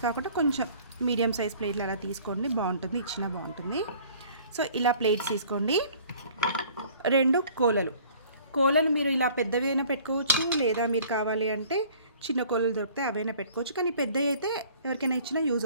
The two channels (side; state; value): both; inverted; correlation -0.52